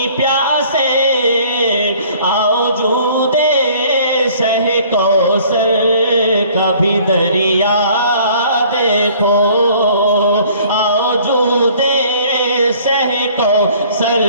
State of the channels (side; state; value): both; inverted; correlation -0.54